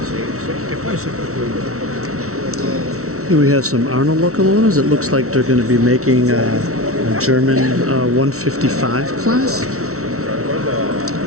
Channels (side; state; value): left; late; 0.64 ms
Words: che poi è sempre quello. Here we have some Arnold locomotives. It looks like they're going to be making a German 155 class.